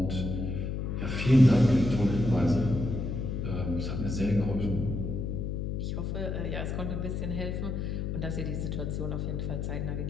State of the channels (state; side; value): noise; left; hum, 2 dB below the sound